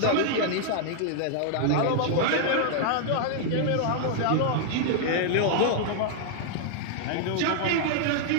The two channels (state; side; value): different; both; correlation -0.01